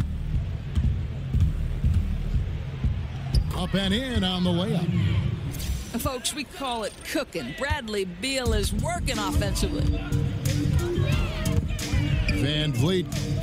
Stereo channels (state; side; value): identical; both; correlation 1.00